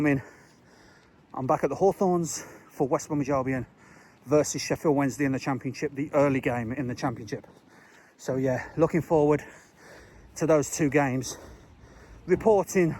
I'm back at the Hawthorns for West Bromwich Albion versus Sheffield Wednesday in the Championship, the early game in the Championship. So yeah, looking forward to those 2 games, reporting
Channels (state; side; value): identical; both; correlation 1.00